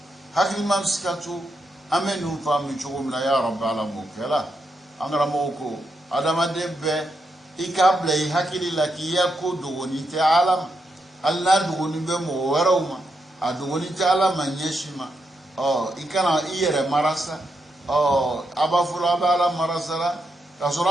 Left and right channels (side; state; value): both; normal; correlation 0.82